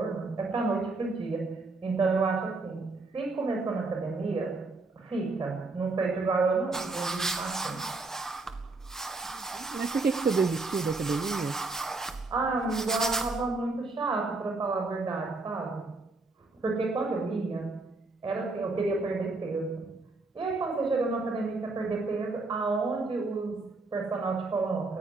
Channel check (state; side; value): quieter; left; 3.5 dB